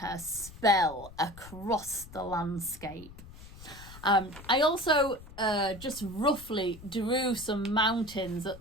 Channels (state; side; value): noise; left; rumble, 17 dB below the sound